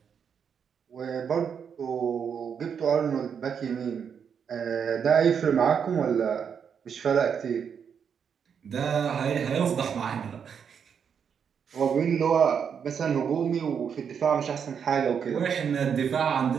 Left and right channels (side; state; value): left; quieter; 7.2 dB